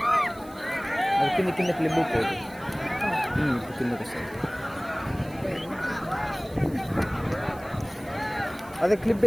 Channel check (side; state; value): right; noise; hiss, 23 dB below the sound